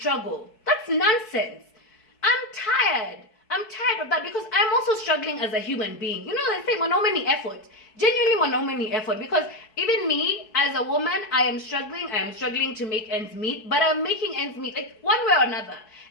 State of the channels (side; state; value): right; late; 4.6 ms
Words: That's nonsense. I'm tired of that, because I'm also struggling as a human being. You know, they say many effort. Genuinely many effort, because even me as a woman, I am struggling to make ends meet, but I'm making ends meet, like one way or another.